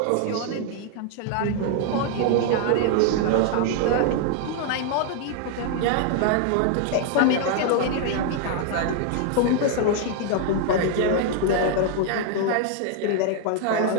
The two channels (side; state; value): both; different; correlation 0.00